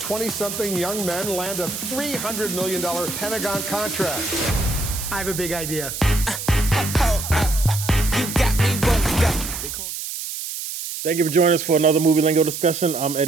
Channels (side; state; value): right; noise; hiss, 6 dB below the sound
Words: young men land a $300 million Pentagon contract? I have a big idea. Thank you for joining us for another Movie Lingo discussion. I'm